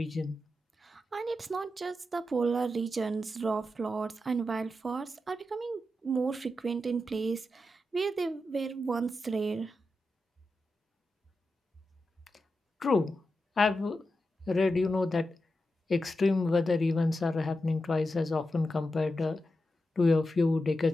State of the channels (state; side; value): normal; both; correlation 0.89